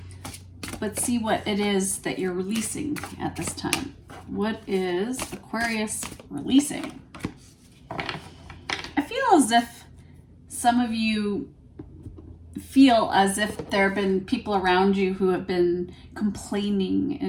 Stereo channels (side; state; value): both; identical; correlation 1.00